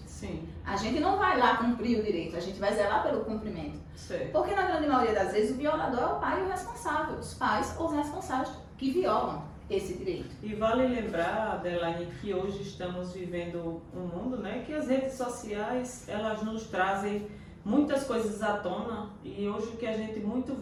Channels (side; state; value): both; identical; correlation 1.00